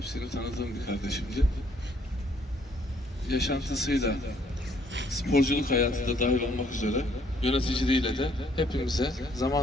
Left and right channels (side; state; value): both; normal; correlation 0.65